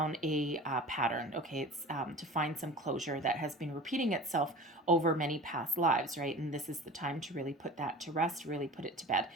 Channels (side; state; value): both; normal; correlation 0.37